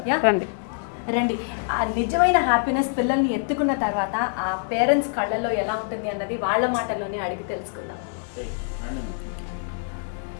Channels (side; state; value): right; silent; digital silence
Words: రండి. ఆ నిజమైన హ్యాపీనెస్ పిల్లల్ని ఎత్తుకున్న తర్వాత ఆ పేరెంట్స్ కళ్ళల్లో ఎలా ఉంటుంది అన్నది వాళ్ళ మాటల్లోనే అడిగి తెలుసుకుందాం.